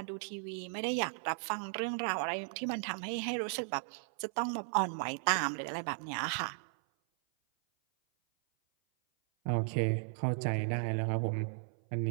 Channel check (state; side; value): silent; left; 54 dB below the other